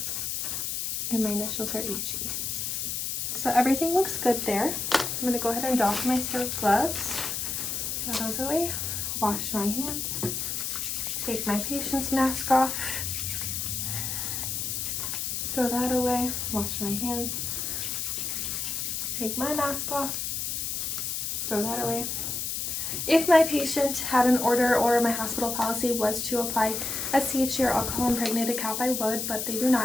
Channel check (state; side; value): noise; left; hiss, 2 dB below the sound